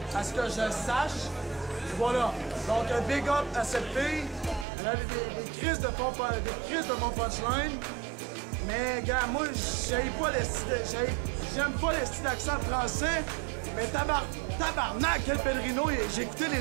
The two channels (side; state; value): left; drops out; at 4.7 s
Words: À ce que je sache. Et voilà. Donc, un big up à cette fille. Elle a des crises de bon punchline. Mais, gars, moi, j'aime pas les styles d'accent français. Mais tabarnak, El Padrino, j'ai écouté les